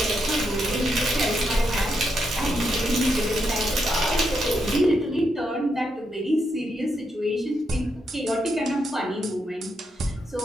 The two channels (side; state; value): both; normal; correlation 0.81